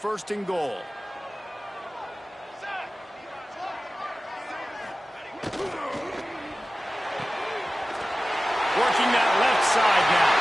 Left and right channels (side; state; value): both; normal; correlation 0.96